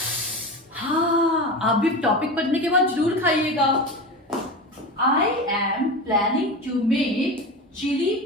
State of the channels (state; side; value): normal; both; correlation 0.26